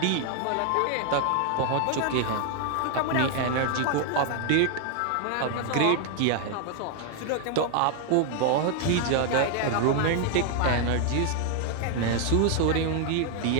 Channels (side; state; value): both; different; correlation 0.00